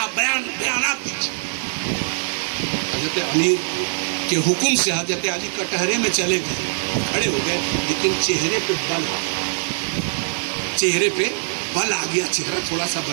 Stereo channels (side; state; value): left; silent; digital silence